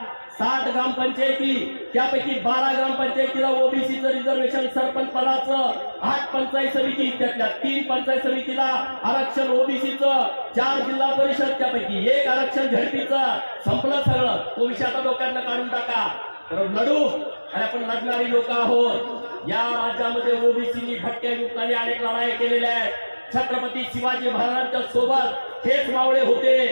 60 ग्रामपंचायती, त्यापैकी 12 ग्रामपंचायतीला ओबीसीचं रिझर्वेशन सरपंच पदाचं, 8 पंचायत समिती, त्यातल्या 3 पंचायत समितीला आरक्षण ओबीसीचं, 4 जिल्हा परिषद, त्यापैकी 1 आरक्षण झडपीचं. संपलं सगळं. तो विषय आता डोक्यातनं काढून टाका. तर लढू, आणि आपण लढणारी लोक आहोत. या राज्यामध्ये ओबीसीनी भटक्या युक्ताने अनेक लढाई केलेल्या आहेत. छत्रपती शिवाजी महाराजांच्या सोबत हेच मावळे होते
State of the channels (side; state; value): both; inverted; correlation -1.00